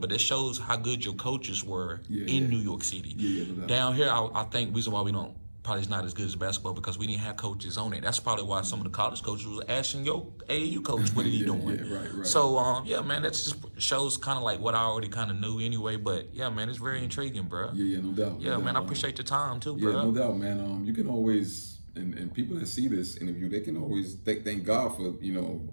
that shows how good your coaches were in New York City. Yeah. Down here, I think reason why we don't. Probably it's not as good as basketball because we didn't have coaches on it. That's probably why some of the college coaches was asking your AAU coach, what are you doing? Yeah, right. So, yeah, man, that just shows kind of like what I already kind of knew anyway. But, yeah, man, it's very intriguing, bro. Yeah, no doubt. Yeah, man, I appreciate your time, too, Yeah, bro. no doubt, man. You can always, and people that see this interview, they can always thank God for, you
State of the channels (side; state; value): both; inverted; correlation -1.00